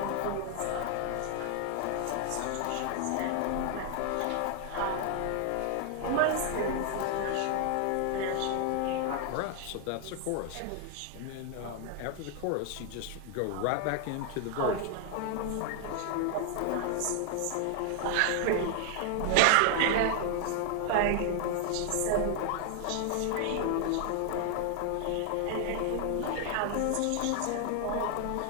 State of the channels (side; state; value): both; different; correlation 0.00